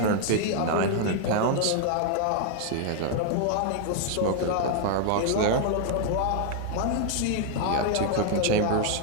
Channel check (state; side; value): different; both; correlation 0.00